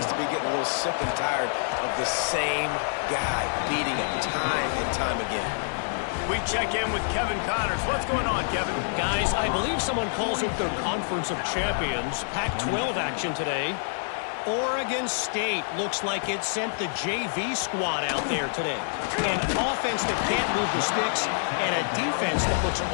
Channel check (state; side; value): silent; right; digital silence